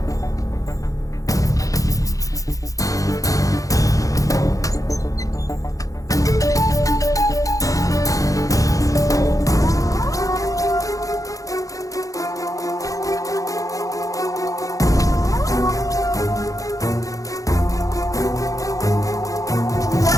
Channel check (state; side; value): late; right; 0.16 ms